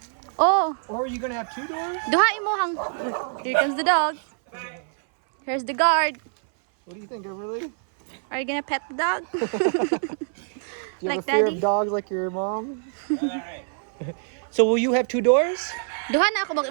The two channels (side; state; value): left; silent; 61 dB below the other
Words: Oh, Or are you gonna have two doors? duhain mo hang. Uy, here comes the dog. Here's the guard. What do you think, Everly? Are you gonna pet the dog? Do you Like have a fear daddy? of dogs like your mom? So will you have two doors? Duha na ako bang